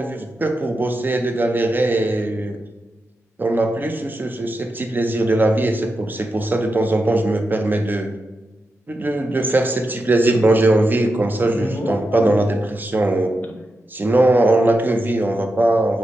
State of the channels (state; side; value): normal; both; correlation 0.88